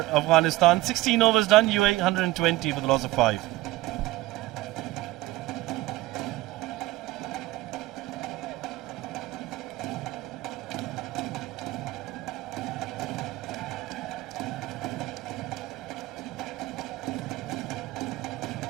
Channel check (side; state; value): left; quieter; 17.7 dB